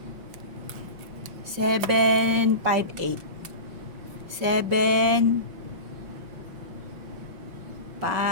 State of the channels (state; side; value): late; left; 5.4 ms